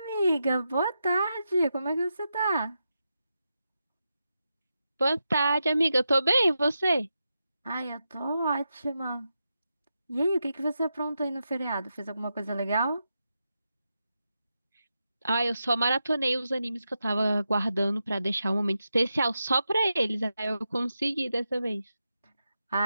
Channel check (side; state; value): both; inverted; correlation -0.88